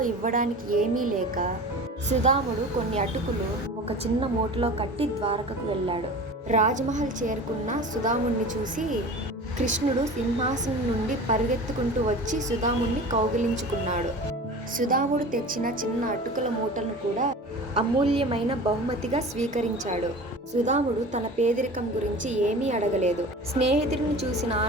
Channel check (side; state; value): both; normal; correlation 0.37